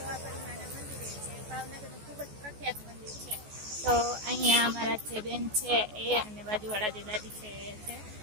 ભાવનગરનું ખૂબ જ પ્રખ્યાત મંદિર છે. તો અહીંયા અમારા જે બેન છે એ અને બાજુવાળા જે દાદી છે એ છે,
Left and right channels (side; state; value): left; late; 14 ms